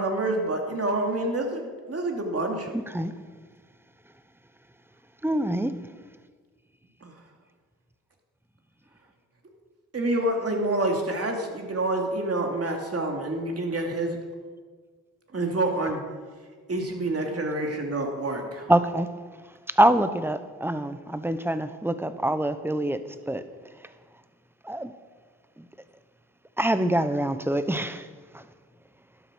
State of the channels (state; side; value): normal; both; correlation 0.53